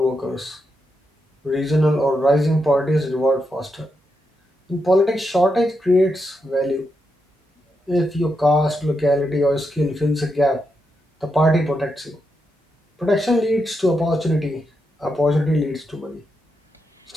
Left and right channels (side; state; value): both; normal; correlation 0.84